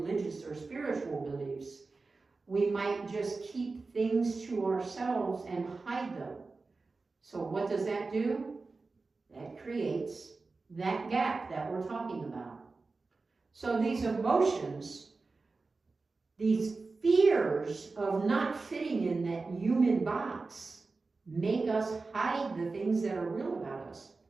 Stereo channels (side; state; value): left; quieter; 3.9 dB